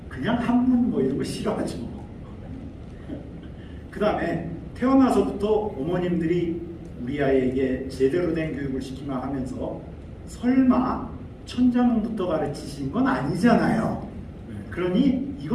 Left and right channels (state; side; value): identical; both; correlation 1.00